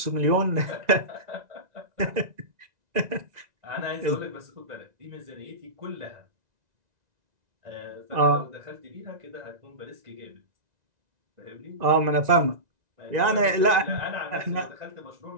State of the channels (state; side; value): late; left; 1.9 ms